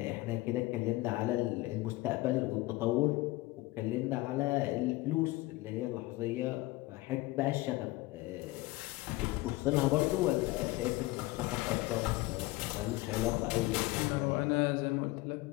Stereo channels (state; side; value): quieter; right; 20.0 dB